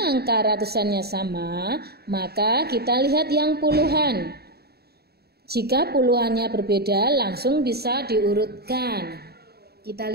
angka ratusannya sama, maka kita lihat yang puluhan. Jika puluhannya berbeda, langsung bisa diurutkan. Kita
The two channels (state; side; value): late; left; 0.46 ms